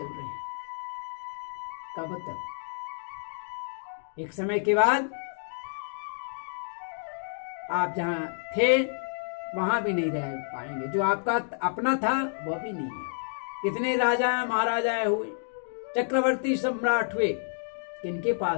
रहे हैं। कब तक? एक समय के बाद आप जहां थे वहां भी नहीं रह पाएंगे। जो आपका अपना था वह भी नहीं है। कितने राजा महाराजा हुए, चक्रवर्ती सम्राट हुए, किनके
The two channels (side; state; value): right; silent; digital silence